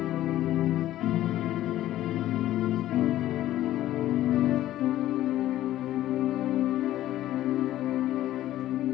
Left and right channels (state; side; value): quieter; right; 13.8 dB